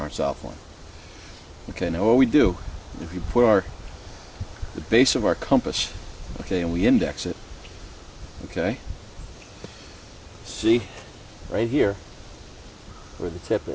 our south line. Okay, now what we do, if you put the base of our compass, okay, and we index it, okay, see right here where the tip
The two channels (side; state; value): both; identical; correlation 1.00